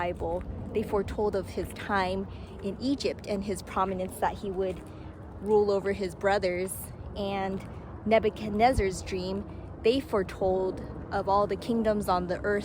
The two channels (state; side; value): identical; both; correlation 1.00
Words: they foretold of his time in Egypt and his prominence that he would rule over his brothers. And Nebuchadnezzar's dream, they foretold of all the kingdoms on the